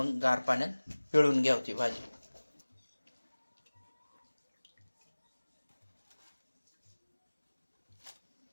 गार पाण्यात पिळून घ्याव ती भाजी.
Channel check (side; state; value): both; inverted; correlation -1.00